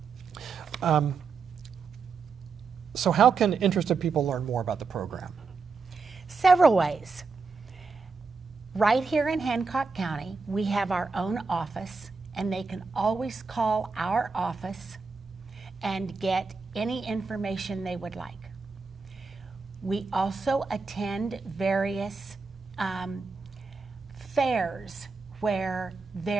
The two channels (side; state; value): left; quieter; 4.6 dB